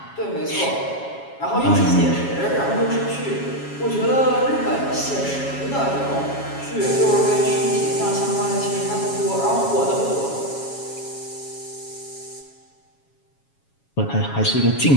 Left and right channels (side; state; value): right; late; 7.2 ms